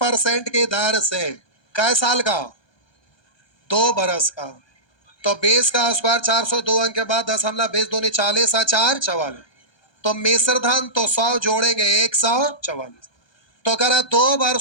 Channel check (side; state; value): right; late; 1.2 ms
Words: की दर से कै साल का 2 वर्ष का, तो 20 का स्क्वायर 402 अंक के बाद 10,20 दूनी 40 4 44, तो मिश्र धन तो 100 जोड़ेंगे 144। तो करा 2